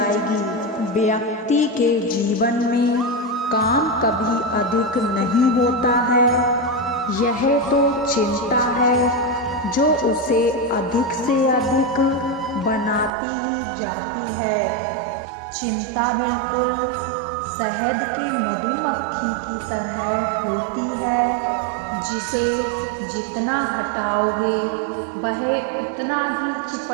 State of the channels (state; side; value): drops out; left; at 13.1 s